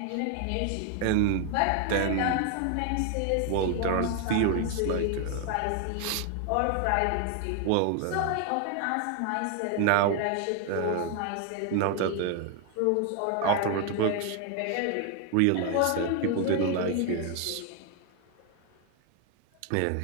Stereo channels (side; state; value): both; different; correlation 0.01